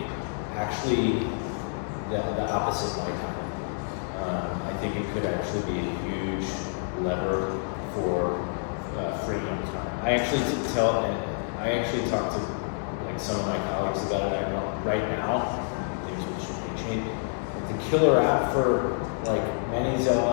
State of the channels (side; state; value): right; silent; digital silence